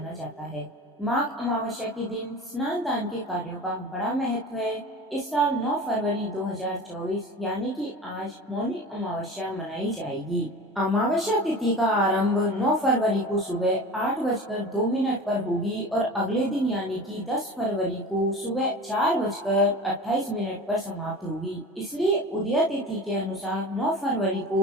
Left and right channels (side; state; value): both; normal; correlation 0.34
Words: जाता है। माघ अमावस्या के दिन स्नान दान के कार्यों का बड़ा महत्व है। इस साल 9 फरवरी 2024 यानी कि आज मौनी अमावस्या मनाई जाएगी। अमावस्या तिथि का आरंभ 9 फरवरी को सुबह 8:02 पर होगी और अगले दिन यानी कि 10 फरवरी को सुबह 4:28 पर समाप्त होगी। इसलिए उदया तिथि के अनुसार 9 फरवरी